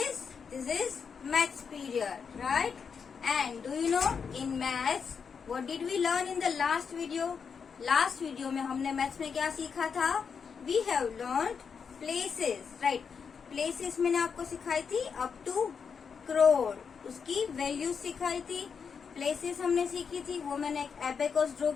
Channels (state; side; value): quieter; right; 6.2 dB